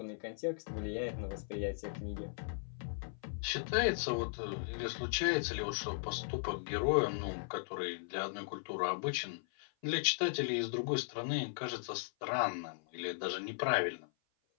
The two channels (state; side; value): silent; right; 53 dB below the other